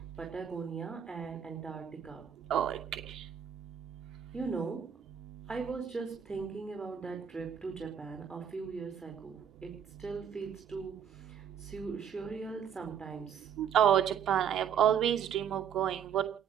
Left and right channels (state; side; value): quieter; left; 8.3 dB